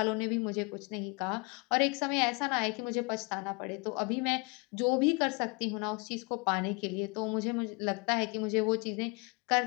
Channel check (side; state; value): right; quieter; 30.1 dB